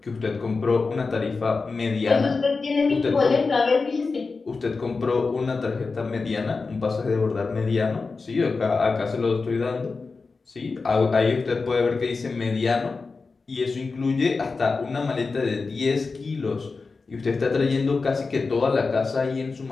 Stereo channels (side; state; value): right; quieter; 4.3 dB